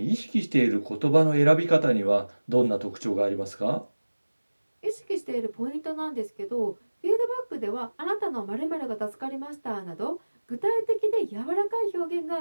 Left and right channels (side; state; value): both; inverted; correlation -1.00